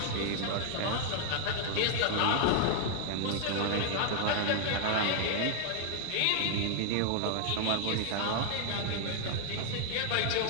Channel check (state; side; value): different; both; correlation 0.00